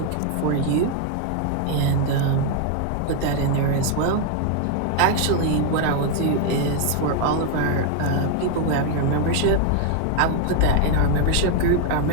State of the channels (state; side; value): different; both; correlation 0.00